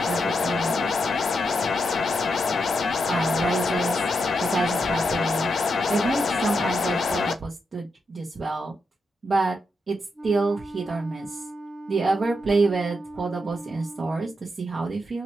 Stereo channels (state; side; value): normal; both; correlation 0.84